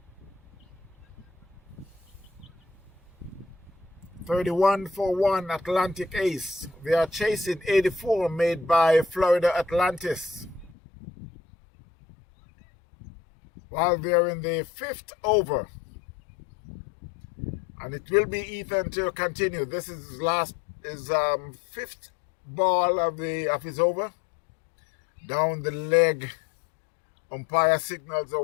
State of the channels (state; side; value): drops out; right; at 10.7 s